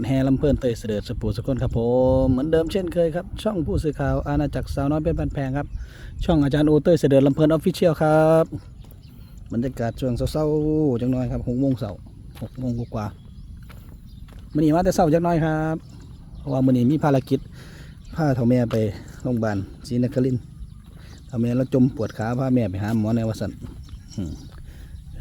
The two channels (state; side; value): identical; both; correlation 1.00